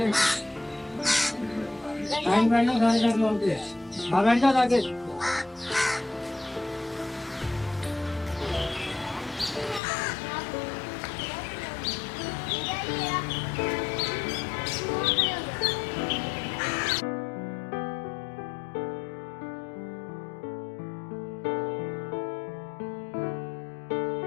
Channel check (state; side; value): drops out; right; at 9.8 s